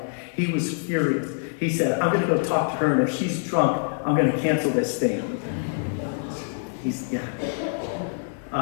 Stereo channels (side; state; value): right; silent; digital silence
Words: He was furious. He said, I'm going to go talk to her, and if she's drunk, I'm going to cancel this thing.